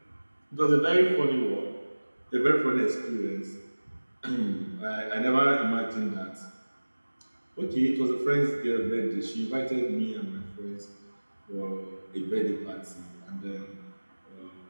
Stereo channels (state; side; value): inverted; both; correlation -1.00